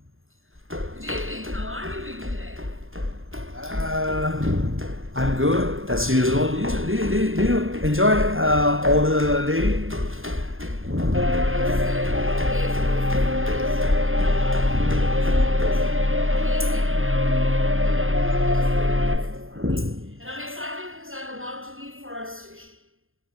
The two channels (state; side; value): late; left; 0.60 ms